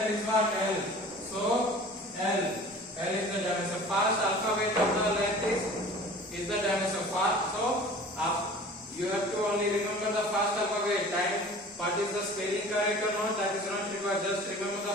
is what? L. So L. L is the dimension. First alphabet of the length is the dimension. So you have to only remember the first alphabet. Time. What is the spelling correct or not? That is not required. Just remember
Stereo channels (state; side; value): normal; both; correlation 0.43